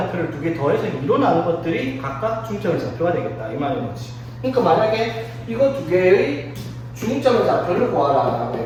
두 개 더해서 2로 나눈 것들이 각각 중점의 좌표가 되겠다. 이 말인 거지. 그러니까 만약에 이거 두 개의 중점의 좌표를 구하라라고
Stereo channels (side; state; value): both; identical; correlation 1.00